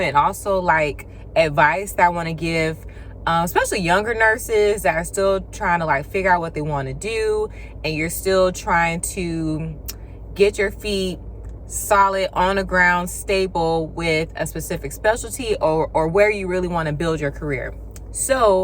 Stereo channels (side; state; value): both; identical; correlation 1.00